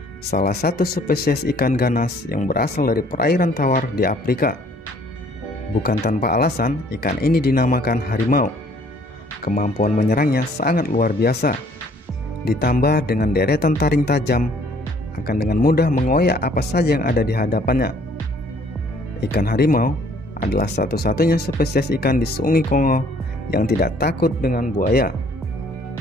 salah satu spesies ikan ganas yang berasal dari perairan tawar di Afrika. Bukan tanpa alasan, ikan ini dinamakan harimau. Kemampuan menyerangnya sangat luar biasa. Ditambah dengan deretan taring tajam, akan dengan mudah mengoyak apa saja yang ada di hadapannya. Ikan harimau adalah satu-satunya spesies ikan di Sungai Kongo yang tidak takut dengan buaya,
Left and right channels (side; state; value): both; normal; correlation 0.60